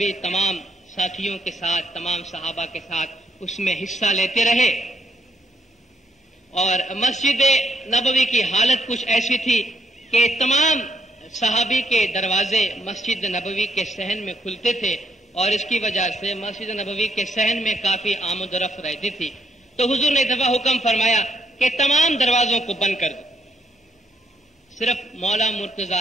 تمام ساتھیوں کے ساتھ، تمام صحابہ کے ساتھ اس میں حصہ لیتے رہے، اور مسجد نبوی کی حالت کچھ ایسی تھی کہ تمام صحابی کے دروازے مسجد نبوی کے صحن میں کھلتے تھے، اور اس کی وجہ سے مسجد نبوی کے صحن میں کافی آمد و رفت رہتی تھی۔ تو حضور نے دفعہ حکم فرمایا کہ تمام دروازوں کو بند کر دو، صرف مولا مرتضی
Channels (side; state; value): both; normal; correlation 0.74